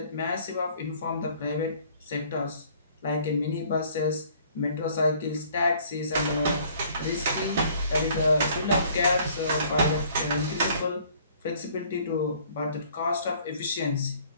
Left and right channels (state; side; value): inverted; both; correlation -0.57